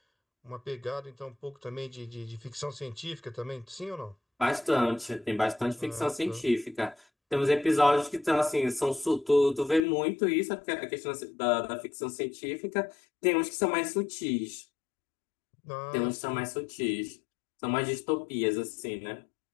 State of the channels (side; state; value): right; drops out; at 9.8 s